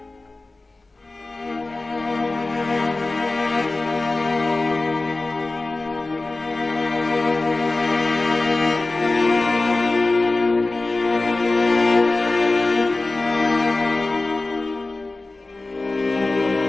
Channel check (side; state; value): right; quieter; 3.2 dB